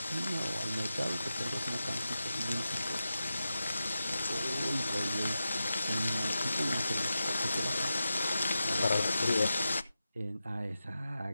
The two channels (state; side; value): inverted; both; correlation -0.91